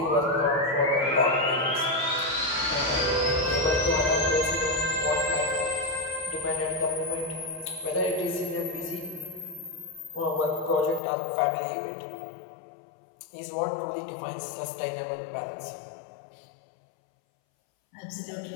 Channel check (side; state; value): right; drops out; at 11.0 s